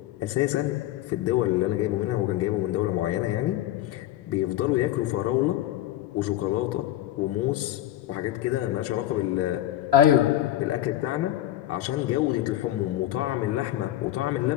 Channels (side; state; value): right; quieter; 13.5 dB